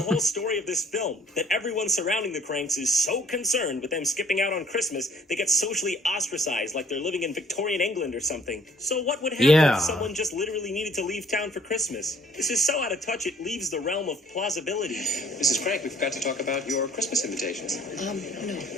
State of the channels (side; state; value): both; normal; correlation 0.58